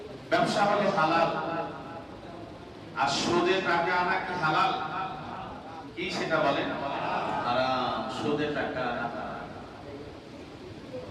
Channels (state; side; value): identical; both; correlation 1.00